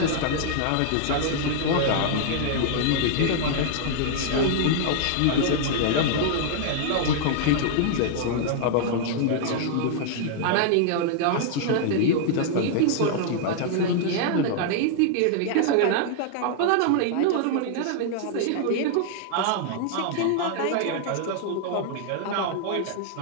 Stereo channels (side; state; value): both; different; correlation -0.01